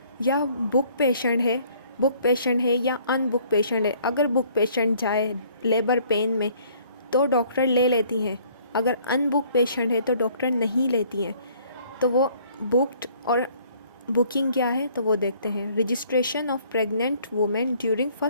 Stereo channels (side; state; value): both; inverted; correlation -0.59